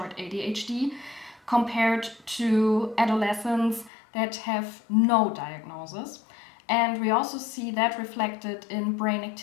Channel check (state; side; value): drops out; right; at 3.9 s